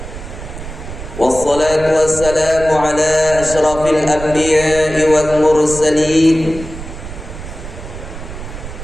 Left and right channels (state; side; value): noise; right; rumble, 11 dB below the sound